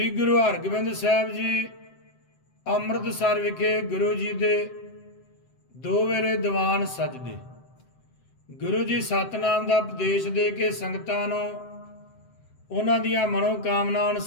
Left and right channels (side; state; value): right; late; 7.8 ms